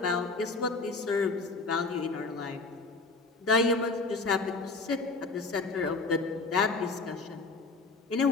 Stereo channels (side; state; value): right; quieter; 3.7 dB